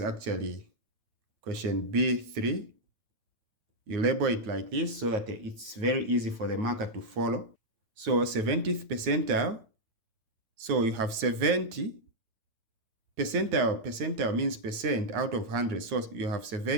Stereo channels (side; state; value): left; late; 9.1 ms